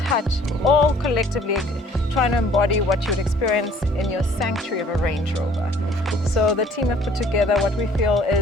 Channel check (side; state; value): both; normal; correlation 0.56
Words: all collectively trying to embody what you would experience in your sanctuary of a Range Rover. So the team have put together what we feel